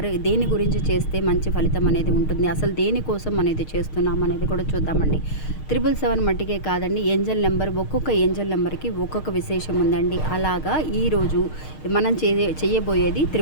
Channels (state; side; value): late; right; 6.5 ms